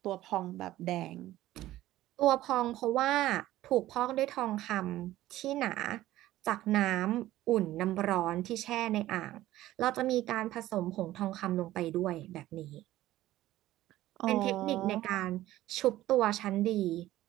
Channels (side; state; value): left; quieter; 15.2 dB